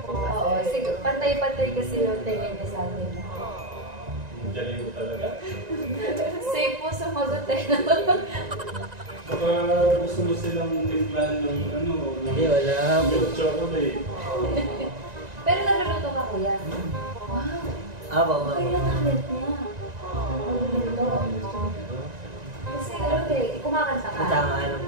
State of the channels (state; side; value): late; left; 1.9 ms